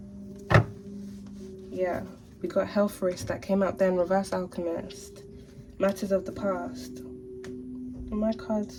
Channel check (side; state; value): both; identical; correlation 1.00